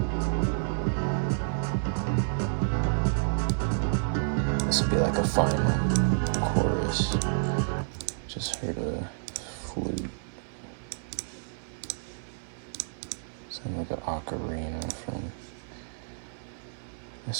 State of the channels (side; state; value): left; silent; 58 dB below the other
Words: This would be like a final chorus. Just heard a flute. Sound like an ocarina from